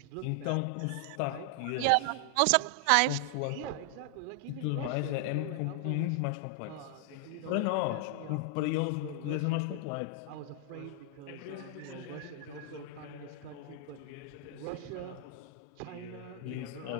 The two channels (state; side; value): different; both; correlation 0.00